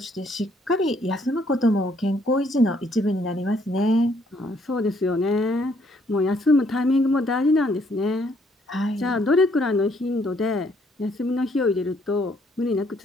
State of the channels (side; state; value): both; normal; correlation 0.67